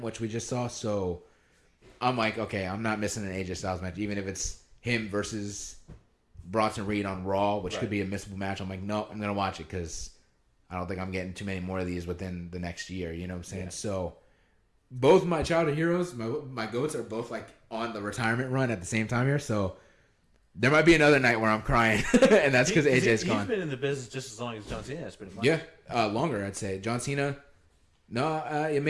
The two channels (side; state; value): both; identical; correlation 1.00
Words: which we just saw. So I'm like, okay, I'm not missing an AJ Styles match, even if it's him versus Bronson Reed on Raw, which could be a missable match. I'm like, no, I'm going to watch it because I don't think I'm getting too many more of these within the next year. You know what I'm saying? Yeah. So both my childhood heroes, my GOATs are both like on the retirement run at the same time here. So there might be another night where I'm crying, and that's because AJ's gone. He's been in the business just as long as John Cena has, pretty much. Yeah, longer, I'd say. John Cena, no,